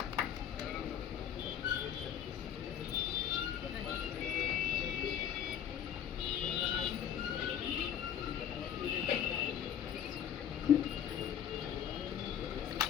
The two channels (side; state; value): right; quieter; 9.3 dB